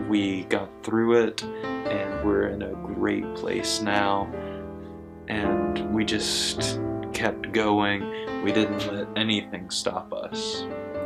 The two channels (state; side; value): identical; both; correlation 1.00